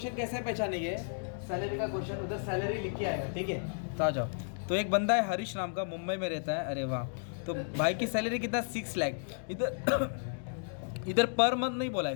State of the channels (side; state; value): right; silent; digital silence